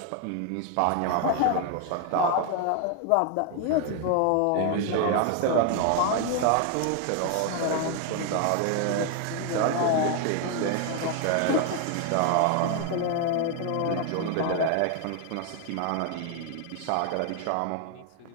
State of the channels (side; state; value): both; different; correlation 0.00